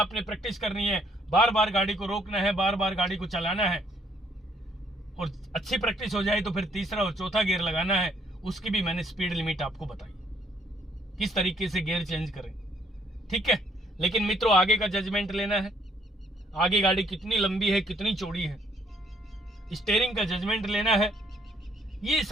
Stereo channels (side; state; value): both; normal; correlation 0.66